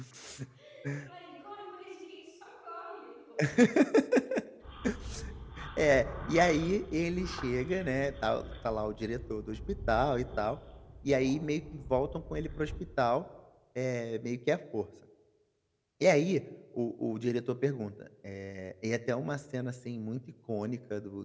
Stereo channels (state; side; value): identical; both; correlation 1.00